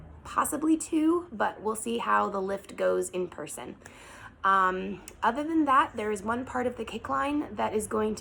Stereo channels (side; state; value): both; identical; correlation 1.00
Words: possibly two, but we'll see how the lift goes in person. Other than that, there is one part of the kick line that is going